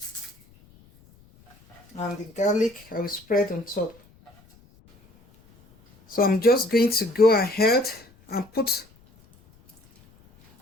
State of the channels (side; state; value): left; noise; rumble, 29 dB below the sound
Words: And the garlic, I will spread on top. So I'm just going to go ahead and put